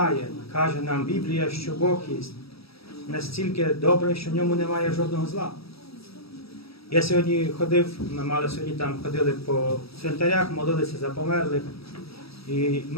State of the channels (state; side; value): late; right; 0.77 ms